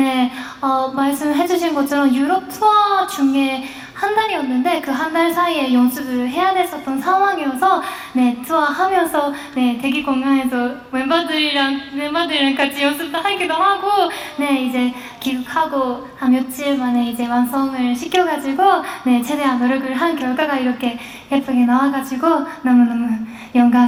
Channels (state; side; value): identical; both; correlation 1.00